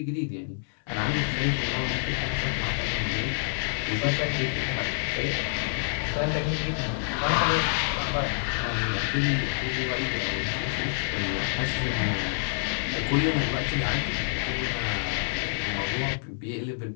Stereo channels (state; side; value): silent; right; 60 dB below the other